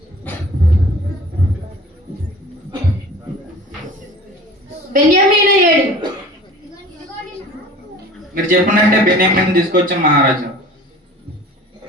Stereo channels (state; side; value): normal; both; correlation 0.43